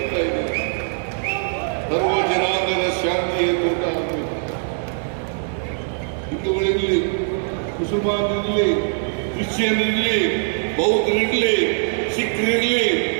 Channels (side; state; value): left; silent; digital silence